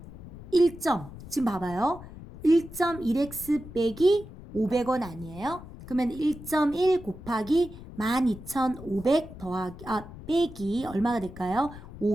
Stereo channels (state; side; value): noise; left; rumble, 15 dB below the sound